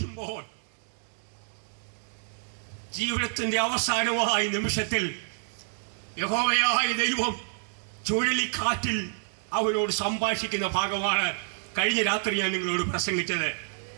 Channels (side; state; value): left; silent; digital silence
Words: ജീവിതത്തിന്റെ അവസാനമായ നിമിഷത്തിൽ യഹോവയായ ദൈവം ചുഴലിക്കാറ്റിൽ അവനോട് സംഭാഷിക്കുന്ന ഭാഗമാണ് കഴിഞ്ഞ രാത്രി ഞാൻ നിങ്ങളോട് പ്രസംഗിച്ചത്.